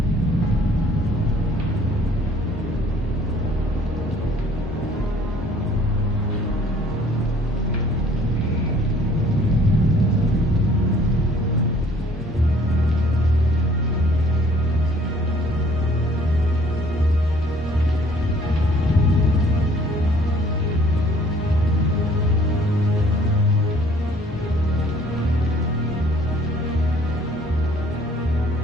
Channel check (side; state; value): both; normal; correlation 0.57